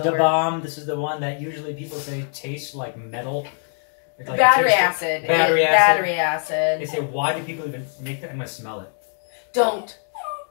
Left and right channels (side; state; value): right; silent; 57 dB below the other